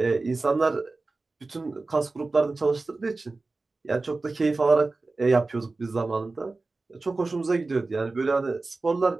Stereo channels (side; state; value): left; quieter; 3.5 dB